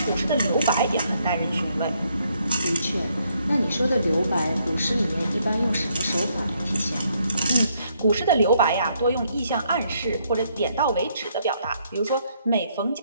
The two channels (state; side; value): inverted; both; correlation -0.72